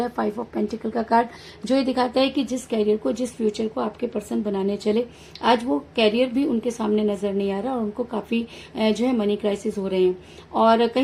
5 ऑफ पेंटिकल का कार्ड, जो ये दिखाता है कि जिस कैरियर को, जिस फ्यूचर को आपके पर्सन बनाने चले, आज वो कैरियर भी उनके सामने नजर नहीं आ रहा और उनको काफी जो है मनी क्राइसिस हो रहे हैं। और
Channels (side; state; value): both; identical; correlation 1.00